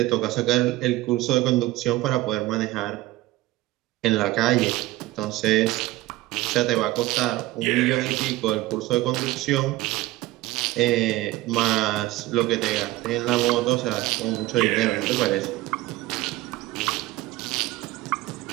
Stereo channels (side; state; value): left; quieter; 18.0 dB